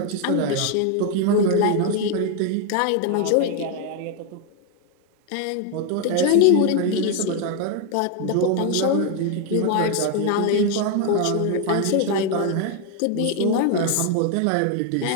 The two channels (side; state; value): both; different; correlation 0.01